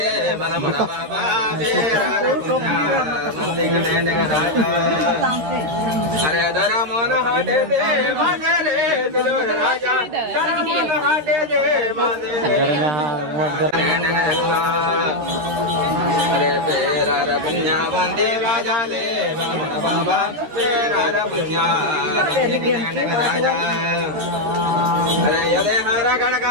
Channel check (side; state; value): left; late; 13 ms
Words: बन बाबा अरे धर्मोन हटे दे मगरे दुलर राजा धर्मोन हटे दे अरे तेरा रपन्या बंदी राजा ले बन बाबा तेरा रपन्या राजा अरे यदे हरा